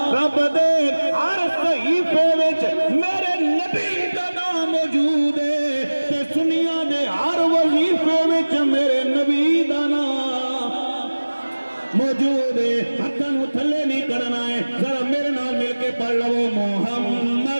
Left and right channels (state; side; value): inverted; both; correlation -1.00